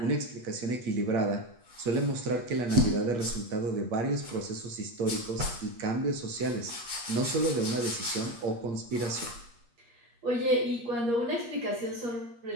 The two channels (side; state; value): left; late; 8.4 ms